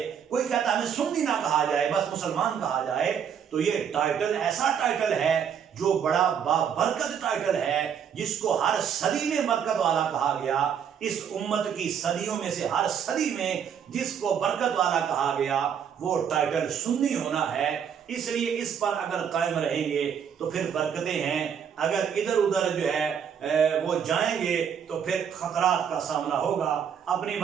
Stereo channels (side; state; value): left; quieter; 7.9 dB